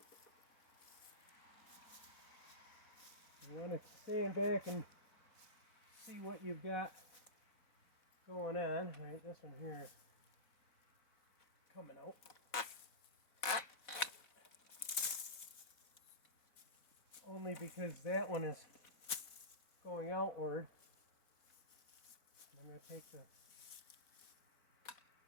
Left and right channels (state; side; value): late; right; 4.0 ms